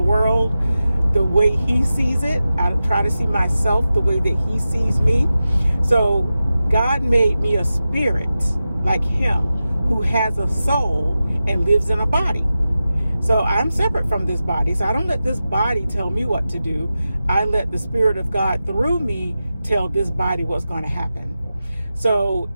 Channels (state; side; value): inverted; both; correlation -0.93